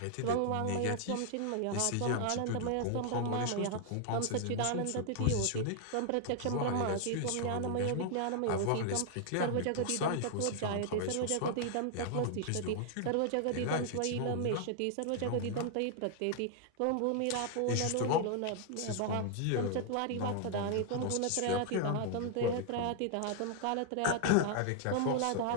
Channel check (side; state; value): both; different; correlation 0.00